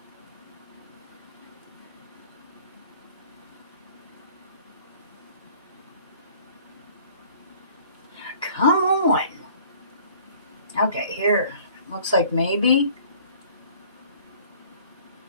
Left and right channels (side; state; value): both; inverted; correlation -0.53